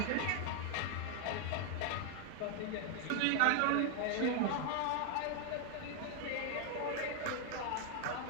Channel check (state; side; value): different; both; correlation 0.00